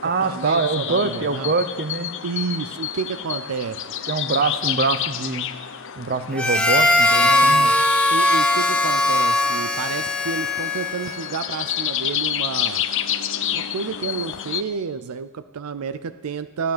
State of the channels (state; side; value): normal; both; correlation 0.32